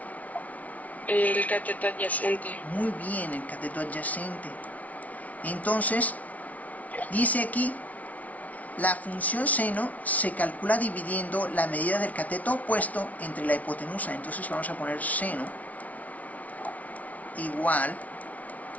El cateto adyacente. Muy bien, el cateto adyacente. Entonces, dice aquí, la función seno se calcula dividiendo la medida del cateto opuesto entre la hipotenusa. Entonces vamos a poner seno igual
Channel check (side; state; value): right; late; 0.070 ms